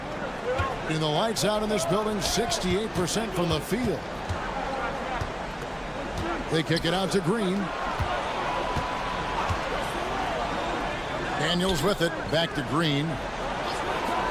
And the lights out in this building, 68% from the field. They kick it out to Green. Daniels with it, back to Green.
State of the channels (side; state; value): both; identical; correlation 1.00